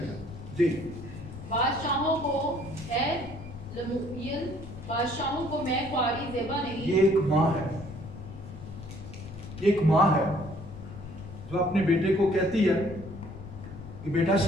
جی بادشاہوں کو اے لمویل، بادشاہوں کو میں کواری زیبا نہیں. یہ ایک ماں ہے، ایک ماں ہے جو اپنے بیٹے کو کہتی ہے کہ بیٹا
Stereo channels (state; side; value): noise; left; rumble, 13 dB below the sound